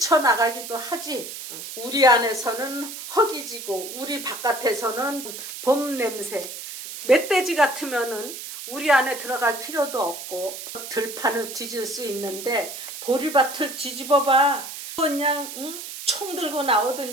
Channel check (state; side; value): noise; right; hiss, 10 dB below the sound